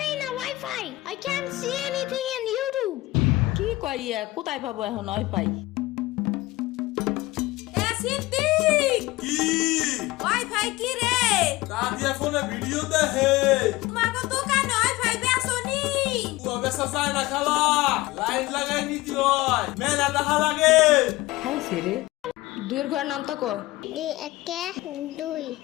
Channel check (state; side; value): quieter; right; 19.3 dB